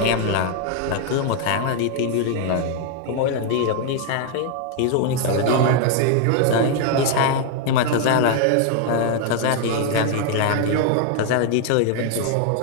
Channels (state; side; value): different; both; correlation 0.01